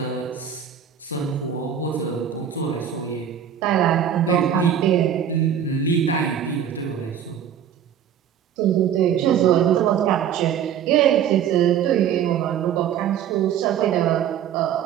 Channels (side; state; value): left; quieter; 9.0 dB